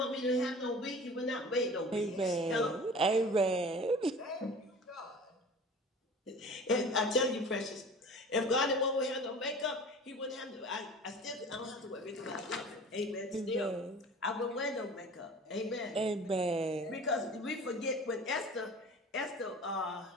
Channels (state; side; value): normal; both; correlation 0.41